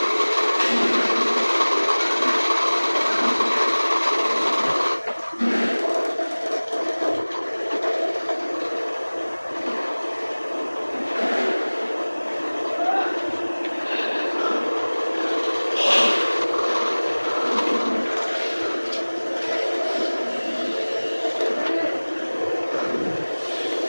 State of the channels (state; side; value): inverted; both; correlation -1.00